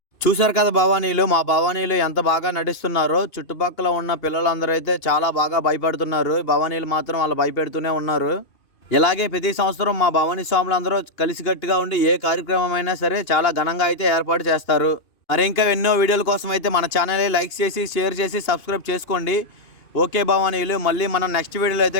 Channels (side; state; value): right; late; 2.6 ms